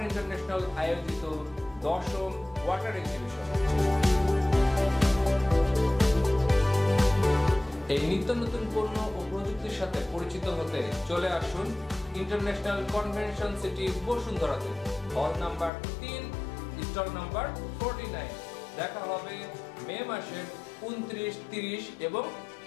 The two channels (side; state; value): right; drops out; at 15.7 s